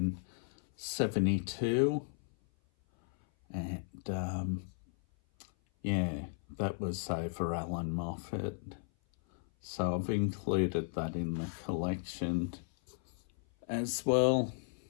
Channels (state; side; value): silent; right; 54 dB below the other